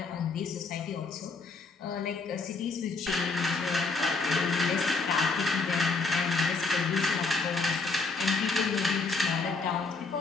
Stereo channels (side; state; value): right; quieter; 4.1 dB